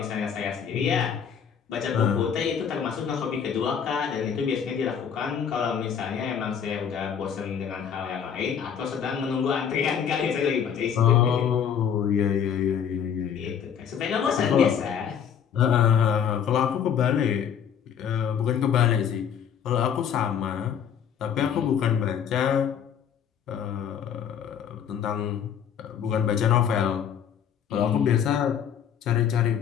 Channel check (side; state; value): right; quieter; 8.1 dB